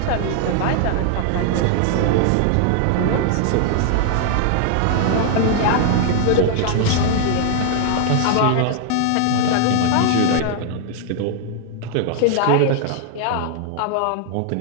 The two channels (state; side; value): different; both; correlation 0.00